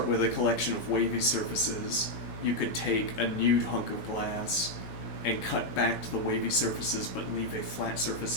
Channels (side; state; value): right; late; 18 ms